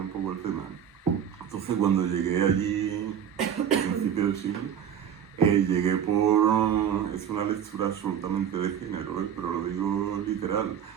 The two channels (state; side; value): quieter; left; 8.7 dB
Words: poco el tema. Entonces cuando llegué allí, a principios del siglo, llegué por... es una lectura absolutamente de género, pero lo digo literal.